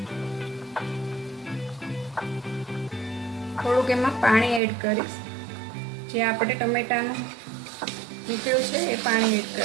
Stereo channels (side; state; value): left; drops out; at 4.6 s